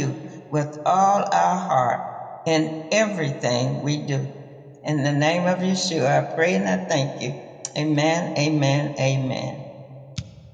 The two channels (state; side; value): identical; both; correlation 1.00